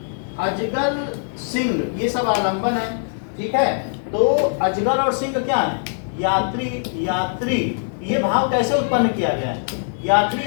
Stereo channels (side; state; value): right; silent; 60 dB below the other